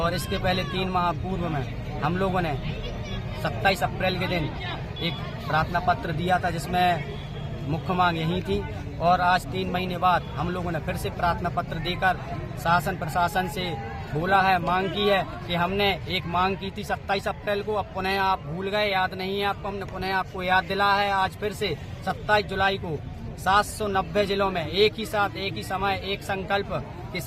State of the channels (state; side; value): identical; both; correlation 1.00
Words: इसके पहले 3 माह पूर्व में हम लोगों ने 27 अप्रैल के दिन एक प्रार्थना पत्र दिया था, जिसमें मुख्य मांग यही थी। और आज 3 महीने बाद हम लोगों ने फिर से प्रार्थना पत्र देकर शासन प्रशासन से बोला है, मांग की है कि हमने एक मांग की थी 27 अप्रैल को, अब पुनः आप भूल गए, याद नहीं है आपको, हमने पुनः आपको याद दिला है। आज फिर से 27 जुलाई को 790 जिलों में एक ही साथ, एक ही समय, एक संकल्प के